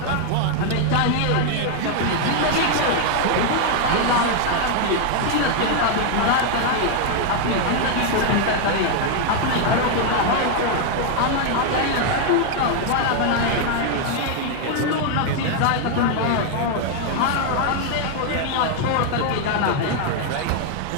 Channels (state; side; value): different; both; correlation 0.00